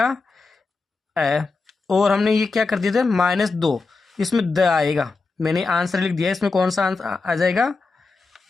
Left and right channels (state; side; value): quieter; right; 4.0 dB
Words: ए। और हमने ये क्या कर दिया था? -2, इसमें द आएगा। मैंने आंसर लिख दिया, इसमें कौन सा आंसर आ जाएगा?